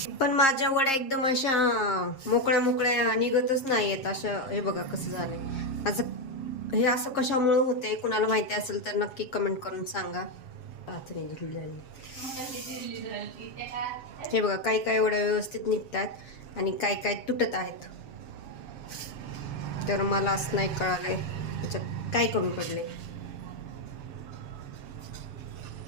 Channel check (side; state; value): right; late; 7.5 ms